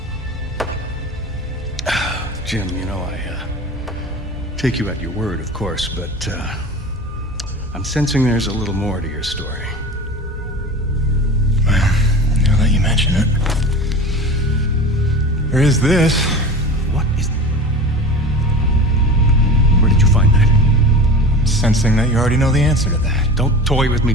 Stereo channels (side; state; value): both; normal; correlation 0.34